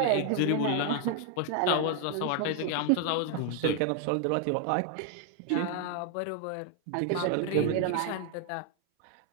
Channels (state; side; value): different; both; correlation 0.00